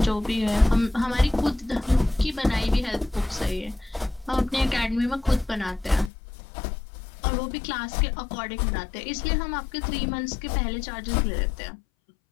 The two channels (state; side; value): drops out; right; at 6.1 s